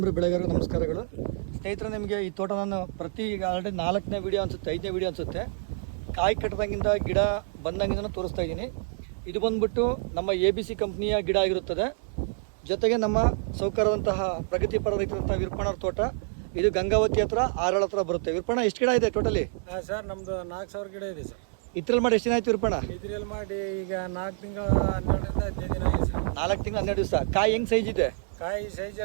ಬೆಳೆಗಾರರು ನಮಸ್ಕಾರಗಳು. ಸ್ನೇಹಿತರೆ, ನಿಮಗೆ ಈ ತೋಟ ನಾನು ಈಗ ಆಲ್ರೆಡಿ 4ನೇ ವಿಡಿಯೋ ಅನಿಸುತ್ತೆ, 5ನೇ ವಿಡಿಯೋ ಅನಿಸುತ್ತೆ. ಕಾಯಿ ಕಟ್ಟದಾಗಿಂದ ಗಿಡ ಬಂದಾಗಿಂದ ತೋರಿಸ್ತಾ ಇದ್ದೀನಿ. ಇದು ಬಂದ್ಬಿಟ್ಟು ನಮ್ಮ ABC ಕಂಪ್ನಿಯ ಗಿಡ ಆಗಿರುತ್ತದೆ. ಜೊತೆಗೆ ನಮ್ಮ ಸೌಕರ್ಯವಂತಹ ಪ್ರಗತಿಪರ ರೈತರಂತಹ ವಿರ್ಪಣರ ತೋಟ. ಇದು ಗಂಗಾವತಿ ಹತ್ರ ಆರಳ ಹತ್ರ ಬರುತ್ತೆ. ವಿರ್ಪಣ ಎಷ್ಟು ಗಿಡ ಇದೆ ಟೋಟಲಿ? ಸರ್ ನಮ್ದು 4000 ಗಿಡ ಇದೆ ಸರ್. ಇದ್ರಲ್ಲಿ ಮಾಡಿ ಎಷ್ಟು ದಿನ ಆಯ್ತು ವಿರ್ಪಣ? ಇದ್ರಲ್ಲಿ ಮಾಡಿ ಈಗ 4 ತಿಂಗಳ 12ರಿಂದ 15 ದಿನ ಆಗಿದೆ ಸರ್. 4 ತಿಂಗಳು 12 ದಿವಸ. ಕಾಯಿ ಹೆಂಗ್ ಸೈಜ್ ಇದೆ? ಕಾಯಿ ಸೈಜ್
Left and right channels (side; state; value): left; silent; digital silence